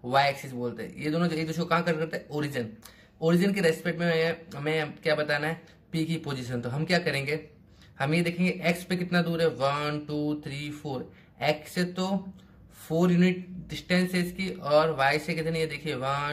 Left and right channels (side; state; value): both; identical; correlation 1.00